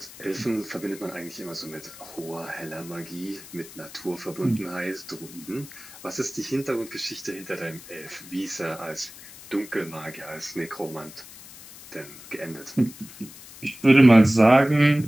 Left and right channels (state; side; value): noise; left; hiss, 17 dB below the sound